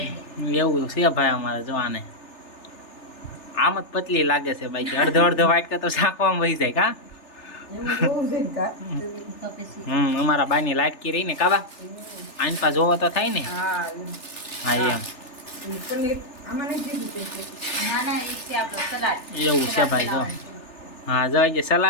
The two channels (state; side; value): late; right; 3.4 ms